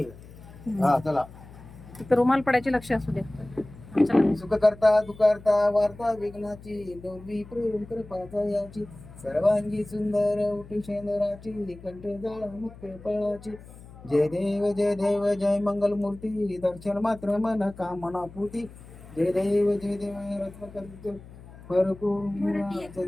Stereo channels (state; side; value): noise; left; hum, 18 dB below the sound